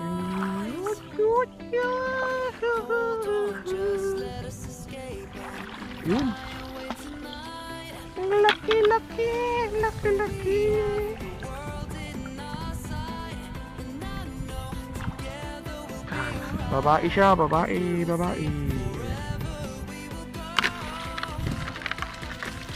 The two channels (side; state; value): both; identical; correlation 1.00